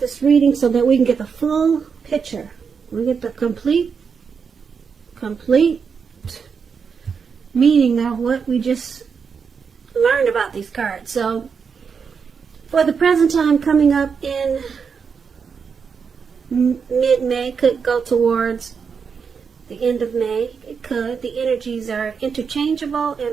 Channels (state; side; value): quieter; left; 6.0 dB